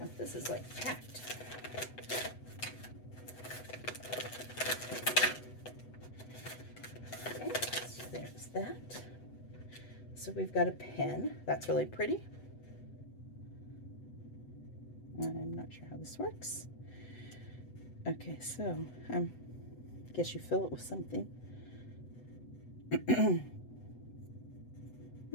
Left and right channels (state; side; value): late; right; 8.0 ms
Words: this is like packed. There's that. So we've got a pen. That's really pretty. I'm not sure how this works. Okay, so I guess you fill it with something.